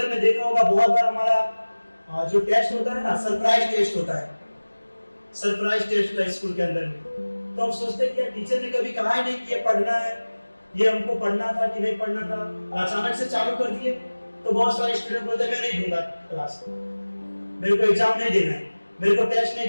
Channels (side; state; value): both; inverted; correlation -1.00